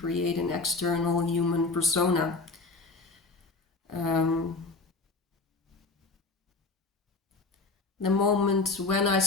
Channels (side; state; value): right; quieter; 3.8 dB